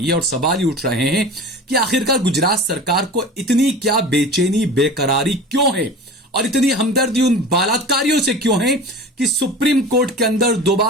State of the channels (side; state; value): both; normal; correlation 0.36